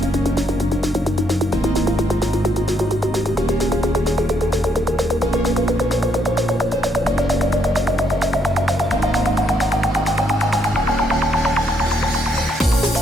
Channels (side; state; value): both; normal; correlation 0.73